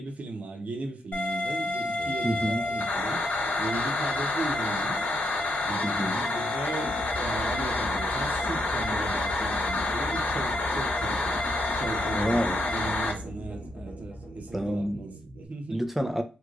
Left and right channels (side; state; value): both; normal; correlation 0.79